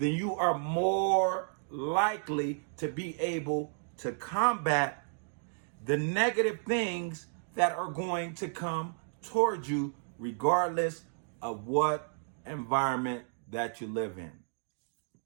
you are more likely to be able to combat the negative things that are going to come towards you regardless of what environment that you live in.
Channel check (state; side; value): silent; left; digital silence